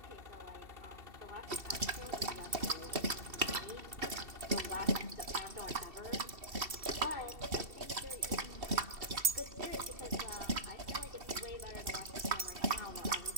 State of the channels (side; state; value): left; late; 2.7 ms